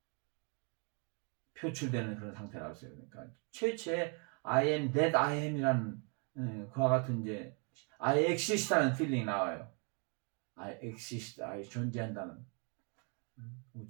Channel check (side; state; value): left; quieter; 36.2 dB